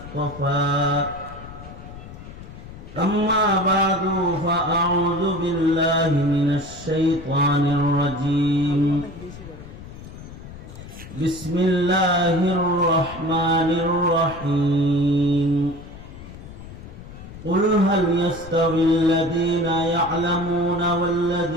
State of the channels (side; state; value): left; noise; rumble, 15 dB below the sound